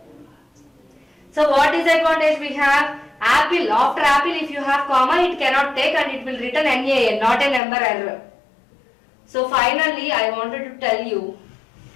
So what disadvantage we have? Apple, after apple if you have comma it cannot take and it will return NaN, not a number error. So finally I wanted to tell you,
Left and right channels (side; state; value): right; drops out; at 7.6 s